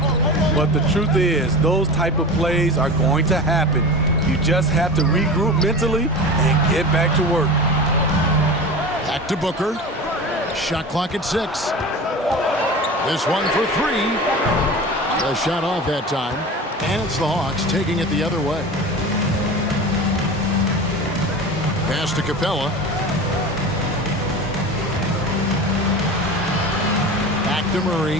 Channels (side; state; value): both; normal; correlation 0.32